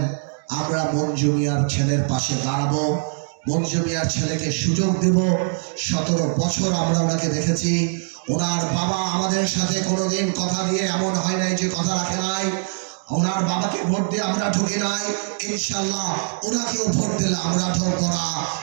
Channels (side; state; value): left; silent; 64 dB below the other